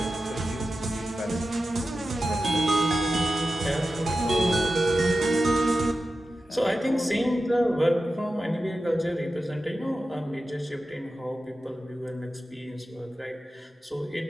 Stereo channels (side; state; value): both; normal; correlation 0.92